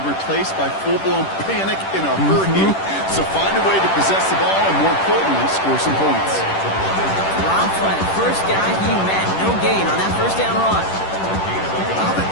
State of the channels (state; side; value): late; right; 10 ms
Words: replaced by full-blown panic in a hurry. So find a way to possess the ball and, more importantly, score some points. Robbed by the first guy he met. No gain on that first down run. I don't think